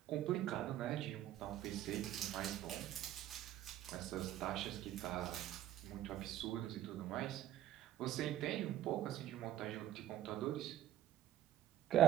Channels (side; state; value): left; quieter; 12.7 dB